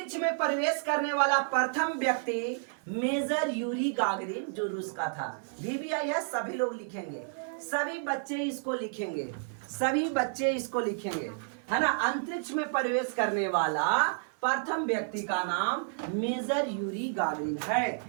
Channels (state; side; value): silent; left; 56 dB below the other